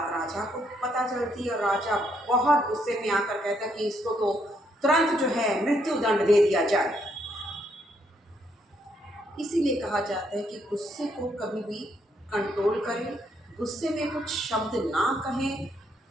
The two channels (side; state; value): both; normal; correlation 0.73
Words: राजा को पता चलती है और राजा बहुत गुस्से में आकर कहता है कि इसको तो तुरंत जो है मृत्यु दंड दे दिया जाए। इसीलिए कहा जाता है कि गुस्से को कभी भी कंट्रोल करें, गुस्से में कुछ शब्द ना कहें,